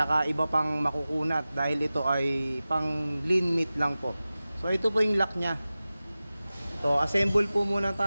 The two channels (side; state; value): both; inverted; correlation -0.96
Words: iba pang makukunat dahil ito ay pang lean meat lang po. So ito po yung lock nya. So assemble po muna